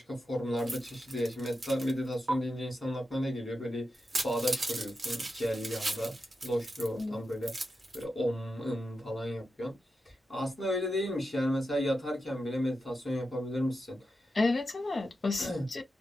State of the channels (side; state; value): both; normal; correlation 0.89